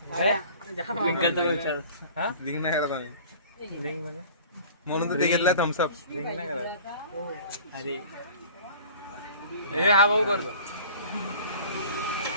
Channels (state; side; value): inverted; both; correlation -0.45